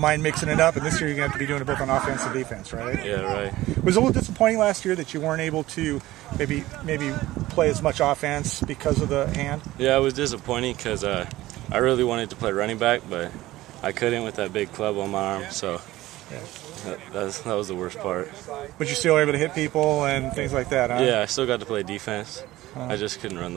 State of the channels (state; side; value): quieter; left; 16.8 dB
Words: mind mixing it up, and this year you're going to have to be doing it both on offense and defense, right? Yeah, right. Was it a little disappointing last year that you weren't able to maybe play as much offense because of the hand? Yeah, it was disappointing because I really wanted to play running back, but I couldn't with that big club on my arm, so that was the worst part. But you're still able to hit people and things like that, huh? Yeah, I still got to play defense. I just couldn't run